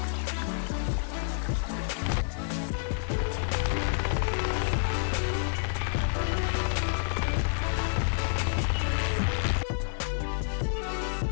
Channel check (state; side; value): silent; right; 59 dB below the other